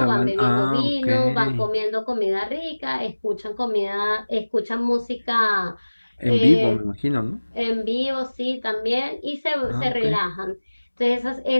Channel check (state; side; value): inverted; both; correlation -1.00